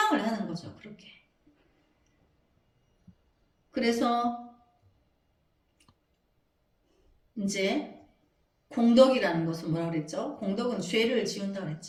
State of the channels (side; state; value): both; identical; correlation 1.00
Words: 하는 거죠. 그렇게. 그래서 이제 공덕이라는 것은 뭐라 그랬죠? 공덕은 죄를 지운다